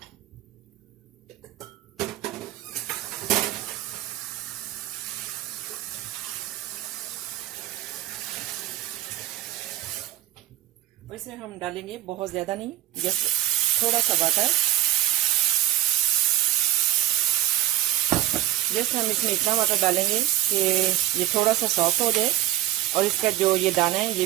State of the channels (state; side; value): quieter; left; 13.9 dB